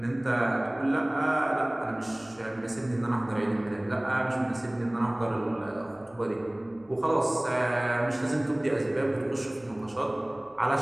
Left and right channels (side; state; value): left; noise; hum, 30 dB below the sound